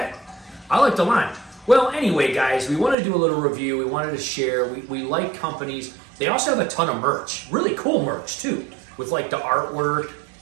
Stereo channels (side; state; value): left; drops out; at 3.0 s